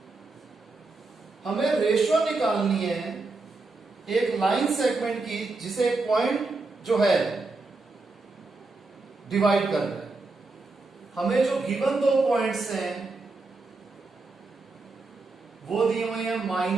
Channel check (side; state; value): left; quieter; 3.6 dB